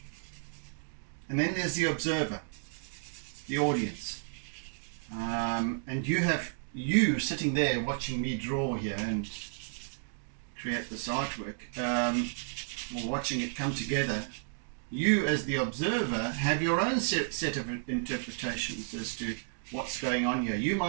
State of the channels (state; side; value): silent; left; digital silence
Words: And then there's the observer, the audience. And you sitting there watching me draw here and create this artwork, or watching it come together. You as the observer have your own set of interpretations as to what's going on here. You